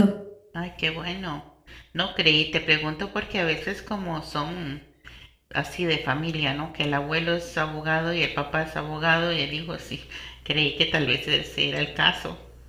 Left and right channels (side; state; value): both; identical; correlation 1.00